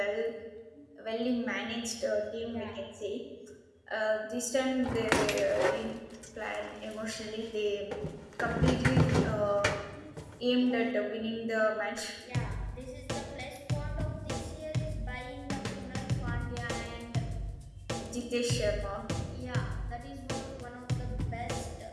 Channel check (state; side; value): identical; both; correlation 1.00